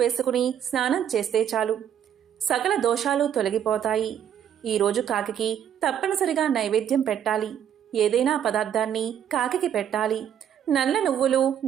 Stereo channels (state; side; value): quieter; left; 9.4 dB